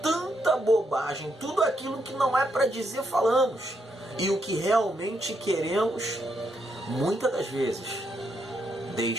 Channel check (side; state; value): both; normal; correlation 0.78